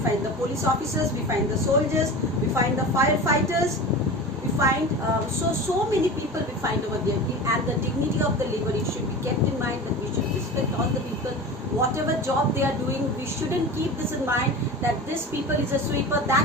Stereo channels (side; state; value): both; normal; correlation 0.31